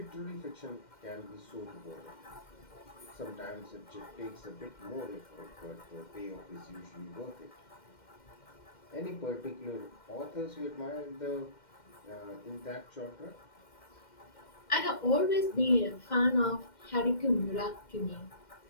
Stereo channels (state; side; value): late; right; 2.1 ms